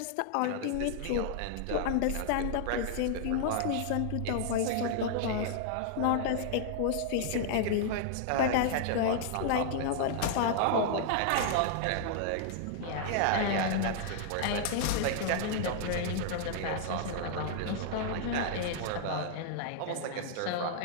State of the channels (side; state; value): both; different; correlation -0.01